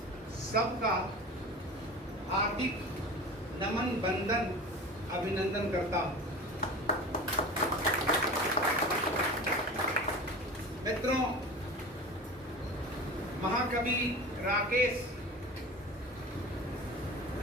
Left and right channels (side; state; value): both; normal; correlation 0.34